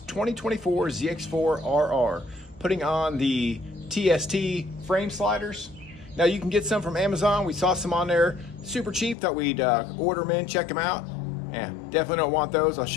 ZX4RR, putting on the TST frame sliders. Now you can get some from Amazon. We saw some on there, super cheap. Thought we'd order them in, check them out. Yeah, definitely don't want those. I'll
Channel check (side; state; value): right; drops out; at 9.2 s